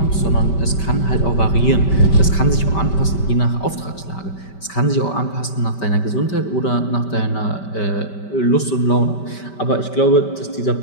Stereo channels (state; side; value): late; right; 5.2 ms